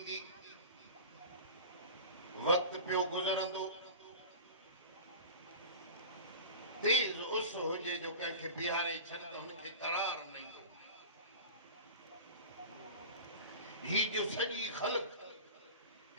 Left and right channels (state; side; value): inverted; both; correlation -0.33